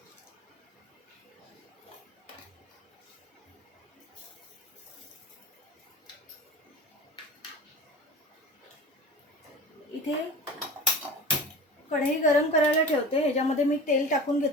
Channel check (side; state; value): both; normal; correlation 0.35